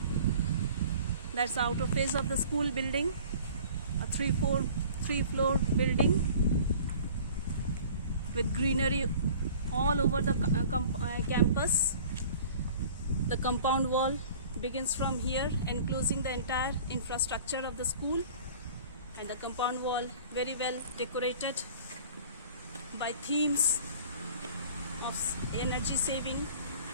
That's the outer face of the school building, a three-floor building with greenery all over the campus. The compound wall begins from here, enclosing the entire infrastructure of the school, and the compound wall very well decorated by themes of energy saving,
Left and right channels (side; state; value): both; inverted; correlation -0.46